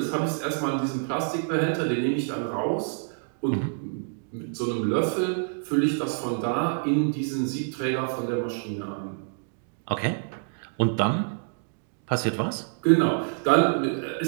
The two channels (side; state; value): left; silent; digital silence